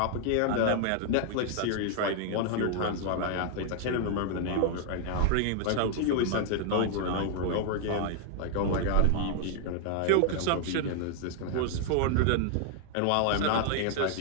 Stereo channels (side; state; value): both; different; correlation 0.00